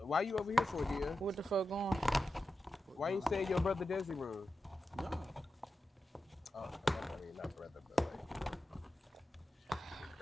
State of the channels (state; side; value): normal; both; correlation 0.91